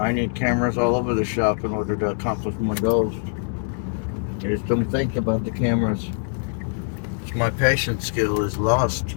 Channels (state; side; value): silent; right; digital silence